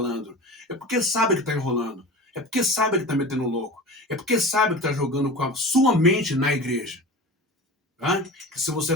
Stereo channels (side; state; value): both; normal; correlation 0.34